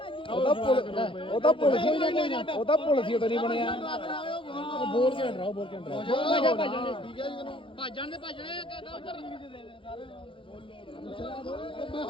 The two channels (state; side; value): late; right; 0.25 ms